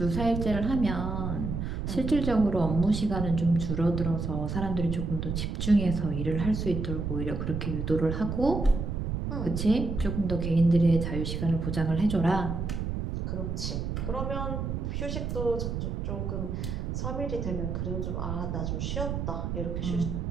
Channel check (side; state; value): right; noise; rumble, 3 dB below the sound